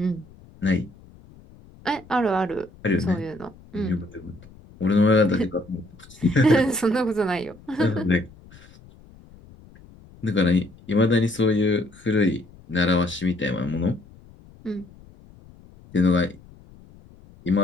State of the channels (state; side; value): noise; left; rumble, 23 dB below the sound